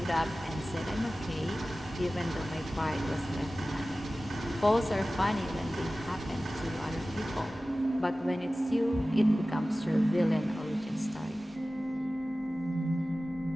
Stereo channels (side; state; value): both; normal; correlation 0.96